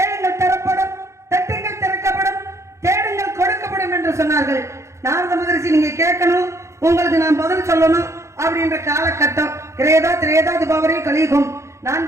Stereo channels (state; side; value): late; left; 0.14 ms